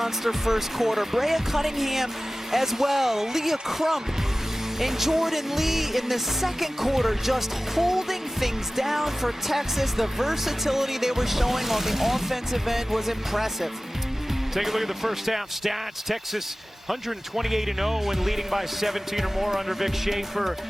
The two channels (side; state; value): both; normal; correlation 0.97